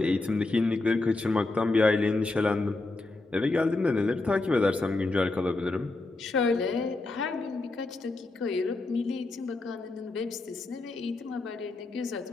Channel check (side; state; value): right; quieter; 3.2 dB